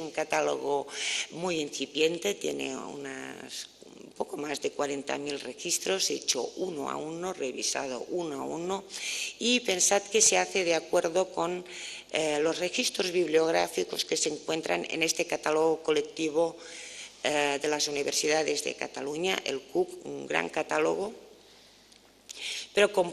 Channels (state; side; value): identical; both; correlation 1.00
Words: catálogo muy incipiente, tiene un poco más de 40.000 registros, hecho uno a uno, revisado uno a uno, y pensad que se hace de acuerdo con los registros bibliográficos que se encuentran en este catálogo colectivo de las universidades de Cataluña, el CUC, un gran catálogo, pero